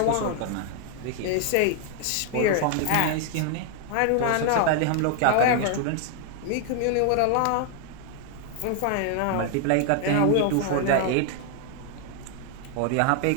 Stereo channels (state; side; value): different; both; correlation 0.00